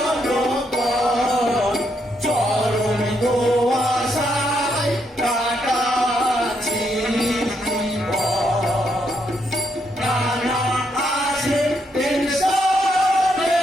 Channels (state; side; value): normal; both; correlation 0.77